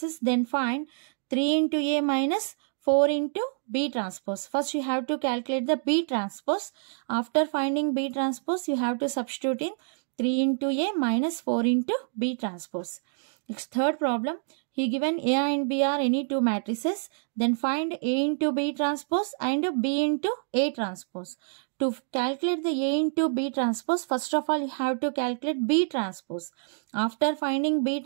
Then find 3 into A minus 4 into B transpose. First, you have to calculate the B transpose. After finding B transpose, you have to substitute in 3 into A minus 4 into B transpose. Next, third problem. He given A and B are any two matrices. Then find A into B transpose and B into A transpose. To calculate the A into B transpose, first of all, you have to calculate B transpose. After finding B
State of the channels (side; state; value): left; silent; digital silence